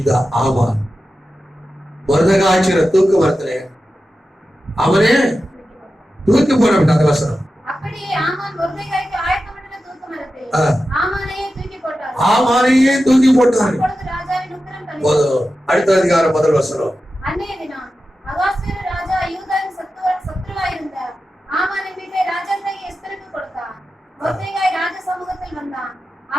ஆமான் மொர்தெகாய் தூக்கு மரத்திலே அவனே தூக்கி போடப்பட்ட அந்த வசனம். ஆமானையே தூக்கி போட்டார். அடுத்த அதிகாரம் முதல் வசனம். அன்றைய தினம் அகாஸ்வேரு ராஜா யூதாவின் சத்துருவாயிருந்த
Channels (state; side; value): normal; both; correlation 0.92